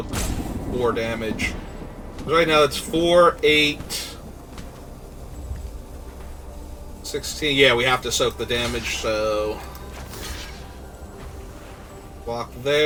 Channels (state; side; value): identical; both; correlation 1.00